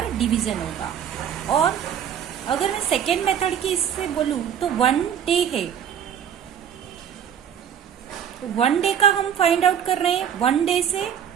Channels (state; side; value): quieter; left; 8.8 dB